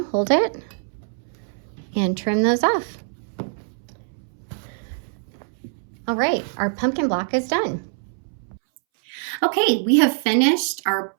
hold it and trim those off. All right, our pumpkin block is done. Okay, we have finished our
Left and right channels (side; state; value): left; silent; 63 dB below the other